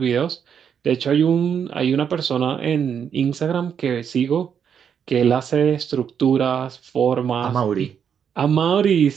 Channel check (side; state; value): left; quieter; 7.7 dB